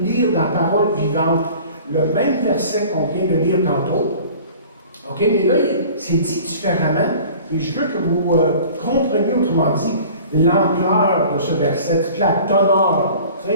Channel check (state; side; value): inverted; both; correlation -0.46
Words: lire dans Parole vivante le même verset qu'on vient de lire tantôt. OK, mais là, c'est dit différemment. Et je veux que vous compreniez, autrement dit, l'ampleur de ce verset, toute la teneur, tu